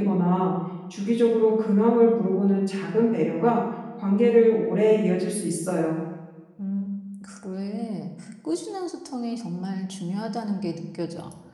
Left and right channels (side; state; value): both; identical; correlation 1.00